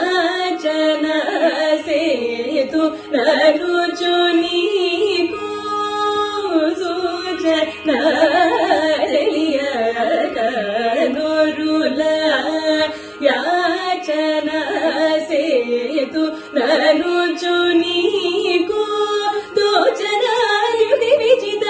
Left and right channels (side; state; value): both; identical; correlation 1.00